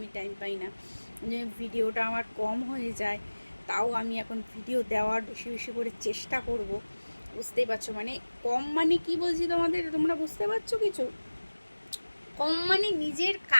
টাইম পাই না, যে ভিডিওটা আমার কম হয়ে যায়। তাও আমি এখন ভিডিও দেওয়ার বেশি বেশি করে চেষ্টা করব, বুঝতেই পারছো? মানে কম মানে কি বলছি তোমাদের, তোমরা বুঝতে পারছো কিছু? কম মানে নিজের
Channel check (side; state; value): both; inverted; correlation -1.00